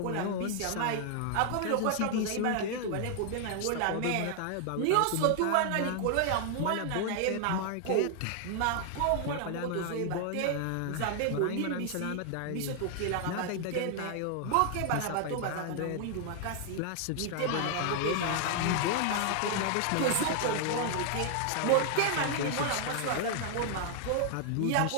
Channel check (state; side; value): different; both; correlation 0.00